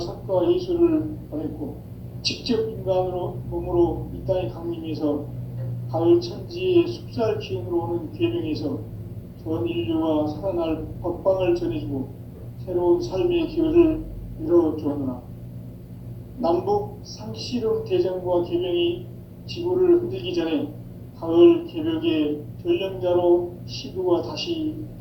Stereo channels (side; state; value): both; identical; correlation 1.00